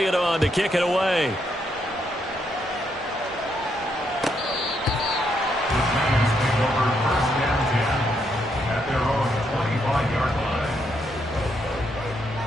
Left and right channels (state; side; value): normal; both; correlation 0.77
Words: on to kick it away.